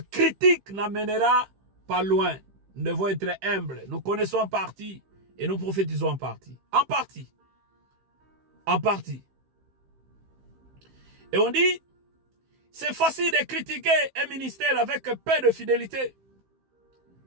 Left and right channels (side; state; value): left; late; 15 ms